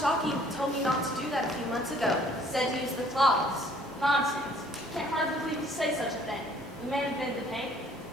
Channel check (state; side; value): normal; both; correlation 0.58